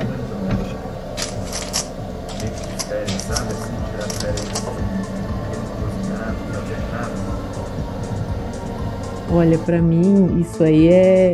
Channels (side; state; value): both; identical; correlation 1.00